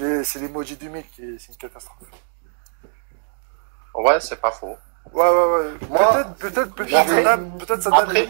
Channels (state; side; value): silent; left; digital silence